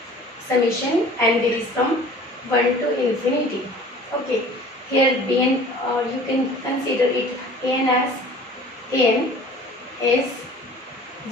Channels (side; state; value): both; normal; correlation 0.46